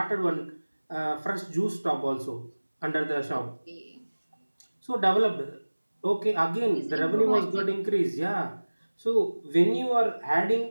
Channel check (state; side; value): inverted; both; correlation -1.00